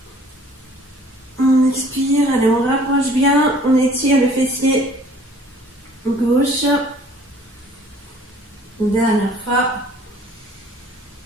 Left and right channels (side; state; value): both; normal; correlation 0.54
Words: On expire, allez, on rapproche bien, on étire le fessier gauche. Une dernière fois.